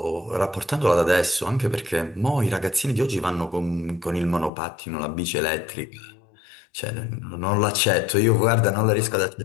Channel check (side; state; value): right; drops out; at 4.5 s